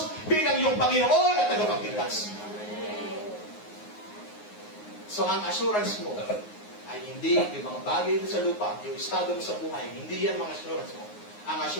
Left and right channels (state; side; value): late; right; 9.6 ms